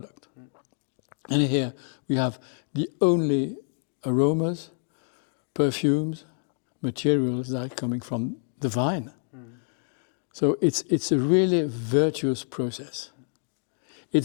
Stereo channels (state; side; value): silent; right; 60 dB below the other